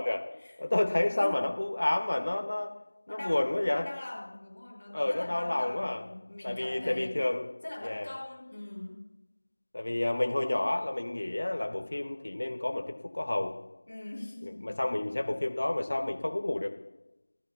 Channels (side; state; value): both; inverted; correlation -1.00